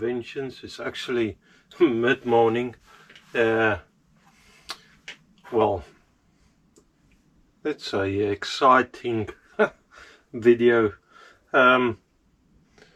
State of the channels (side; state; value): both; identical; correlation 1.00